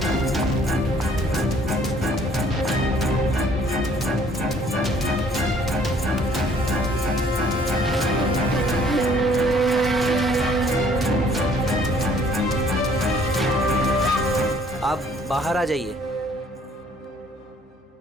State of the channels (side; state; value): both; normal; correlation 0.59